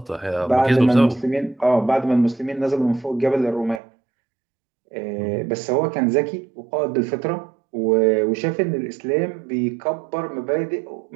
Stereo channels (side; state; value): left; drops out; at 3.8 s